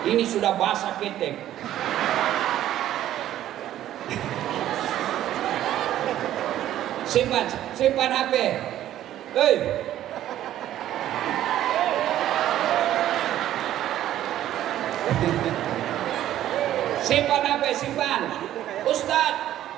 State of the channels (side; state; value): left; quieter; 12.5 dB